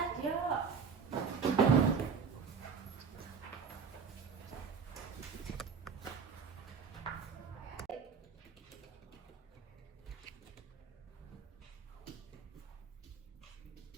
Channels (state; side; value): quieter; left; 6.1 dB